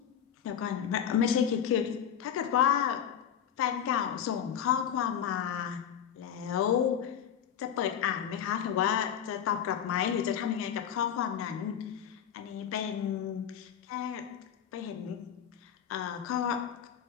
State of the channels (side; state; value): right; quieter; 8.8 dB